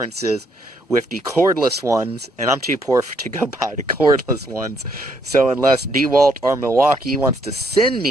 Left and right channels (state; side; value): normal; both; correlation 0.71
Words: with the cordless ones, and I'm too poor to go buy the cordless ones. So unless DeWalt or Milwaukee wants to send